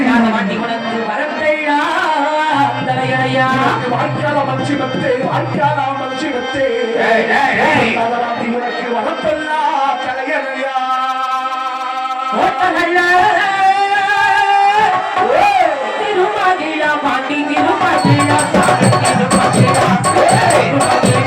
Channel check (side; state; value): both; identical; correlation 1.00